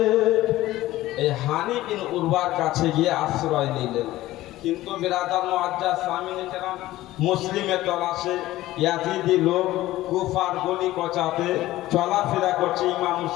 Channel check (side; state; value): right; quieter; 16.2 dB